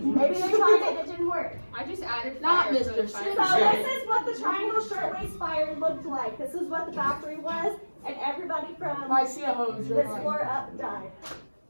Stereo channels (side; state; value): both; inverted; correlation -1.00